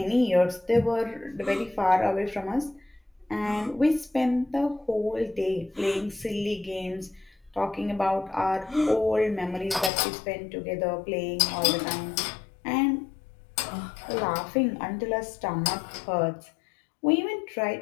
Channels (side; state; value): right; drops out; at 9.9 s